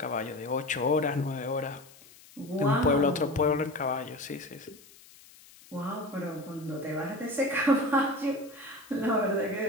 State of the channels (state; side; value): noise; left; hiss, 23 dB below the sound